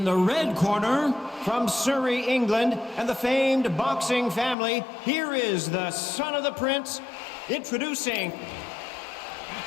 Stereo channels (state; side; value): drops out; right; at 4.5 s